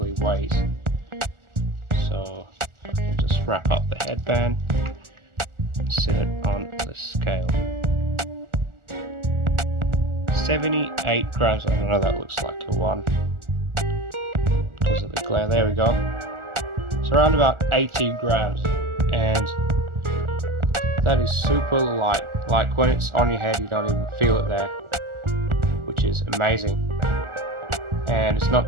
weighs. So I can just wrap up the headband and sit it on the scale. 78 grams. I don't know, that looks like a 1 because of the glare. There we go. It's around about 80 grams, and that is super light. Like when it's on your head, you don't even feel it there, which is amazing. And it's not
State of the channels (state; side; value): late; left; 1.4 ms